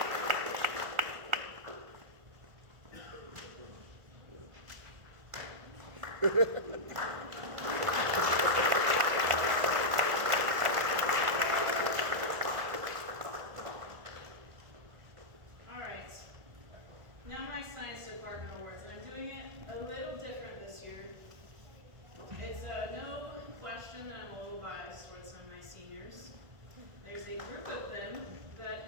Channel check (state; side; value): late; left; 1.5 ms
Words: All right. Now my science department awards, and I'm doing it a little different this year. It's no question that I'm a little biased towards some of my seniors. There's a group of them that